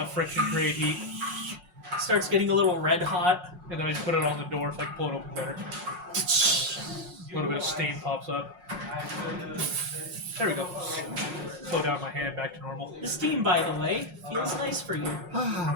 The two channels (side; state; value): left; late; 5.5 ms